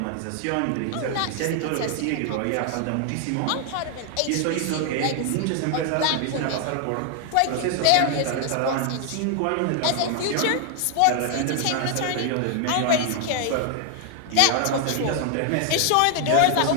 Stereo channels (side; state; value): both; different; correlation 0.00